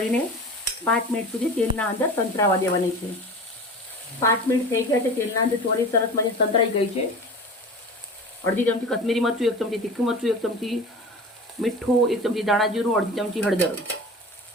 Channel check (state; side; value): normal; both; correlation 0.35